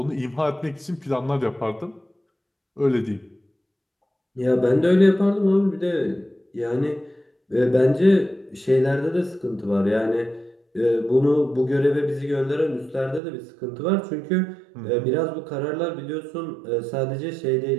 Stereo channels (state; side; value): drops out; left; at 13.2 s